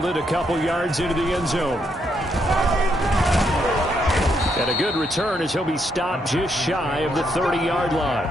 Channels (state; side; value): normal; both; correlation 0.76